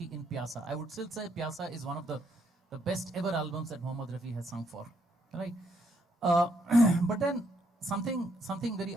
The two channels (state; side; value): normal; both; correlation 0.73